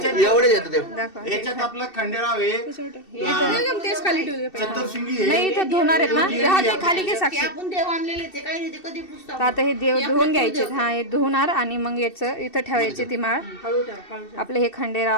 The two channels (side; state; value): right; late; 2.7 ms